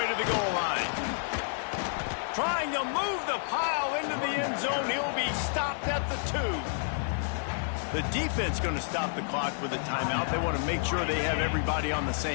to the goal line. Trying to move the pile into the end zone. He'll be stopped at the 2. The defense going to stop the clock with a timeout. They want to make sure they have everybody on the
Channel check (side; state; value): right; silent; 58 dB below the other